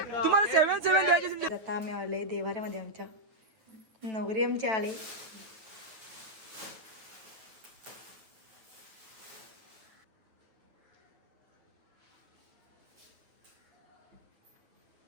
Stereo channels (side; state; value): left; late; 9.3 ms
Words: तुम्हाला 7-7 द्यायचे. आता आम्ही आले देवाऱ्यामध्ये, आमच्या नवरी आमचे आले.